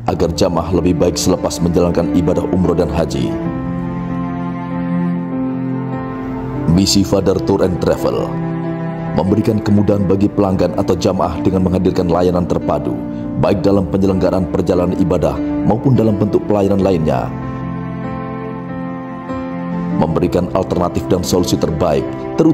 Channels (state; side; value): identical; both; correlation 1.00